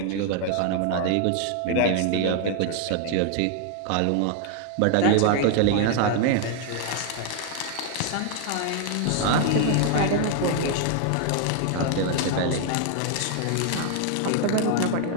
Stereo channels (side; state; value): both; different; correlation 0.00